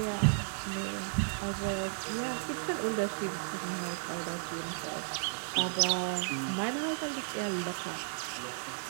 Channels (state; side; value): silent; left; digital silence